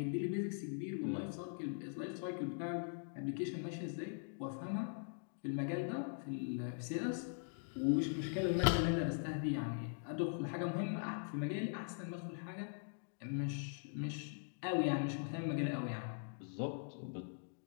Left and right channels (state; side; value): silent; right; digital silence